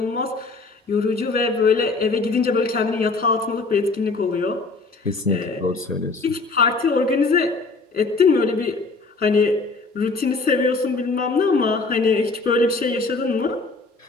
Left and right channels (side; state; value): right; quieter; 3.7 dB